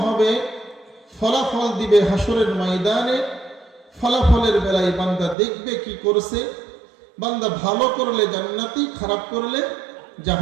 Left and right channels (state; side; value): drops out; left; at 5.4 s